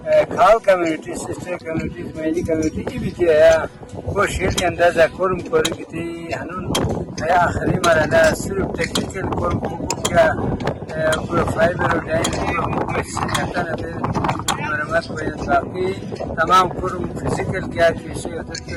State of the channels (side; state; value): both; identical; correlation 1.00